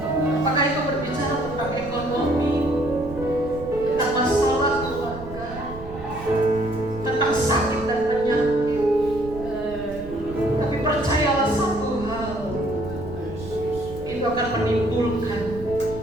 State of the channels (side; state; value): right; noise; rumble, 13 dB below the sound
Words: Apakah itu berbicara tentang ekonomi, tentang masalah keluarga, tentang sakit dan penyakit. Tapi percayalah satu hal, itu akan menimbulkan